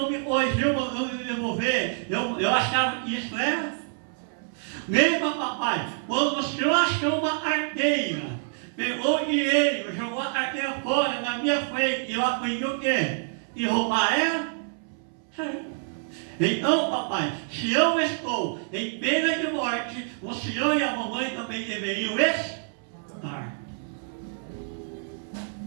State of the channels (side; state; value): left; silent; 60 dB below the other